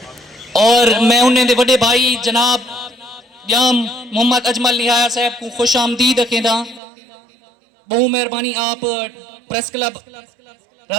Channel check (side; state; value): left; drops out; at 6.8 s